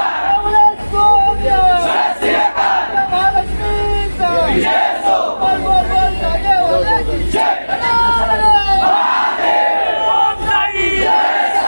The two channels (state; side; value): inverted; both; correlation -1.00